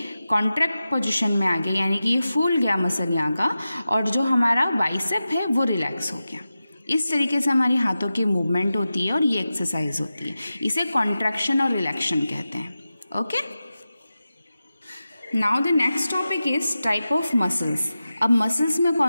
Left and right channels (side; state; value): both; inverted; correlation -0.93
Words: कॉन्ट्रैक्ट पोजीशन में आ गया, यानी कि ये फूल गया मसल यहाँ का, और जो हमारा बाइसेप है वो रिलैक्स हो गया। इस तरीके से हमारी हाथों की मूवमेंट होती है और ये एक्सरसाइज होती है, इसे कॉन्ट्रैक्शन और रिलैक्शन कहते हैं। Okay, now the next topic is type of muscles. अब मसल्स में